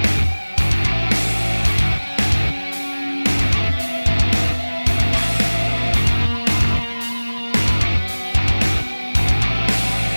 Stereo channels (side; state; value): both; inverted; correlation -1.00